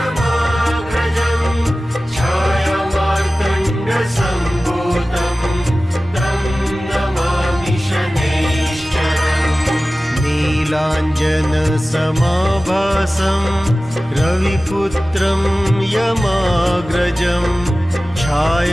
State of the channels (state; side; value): normal; both; correlation 0.96